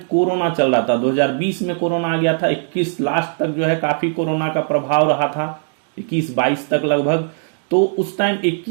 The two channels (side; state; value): left; silent; digital silence